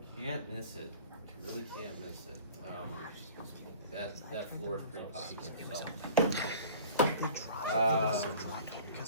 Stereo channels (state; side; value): inverted; both; correlation -0.44